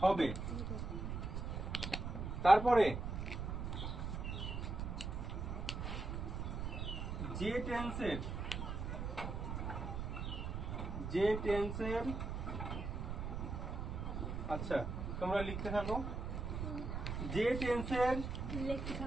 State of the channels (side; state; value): right; noise; rumble, 3 dB below the sound